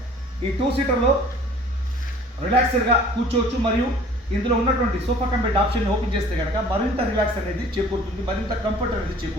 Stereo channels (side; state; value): both; normal; correlation 0.50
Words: ఈ 2 సీటర్లో రిలాక్స్డ్గా కూర్చోవచ్చు మరియు ఇందులో ఉన్నటువంటి సోఫా కంపెట్ ఆప్షన్ ఓపెన్ చేస్తే కనుక మరింత రిలాక్స్ అనేది చేకూరుతుంది, మరింత కంఫర్ట్ అనేది